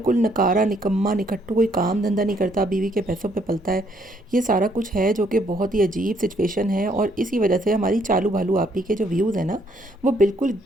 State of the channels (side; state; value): both; normal; correlation 0.68